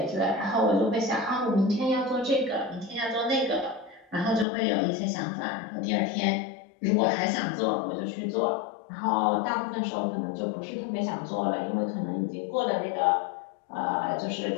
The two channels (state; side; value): drops out; right; at 4.5 s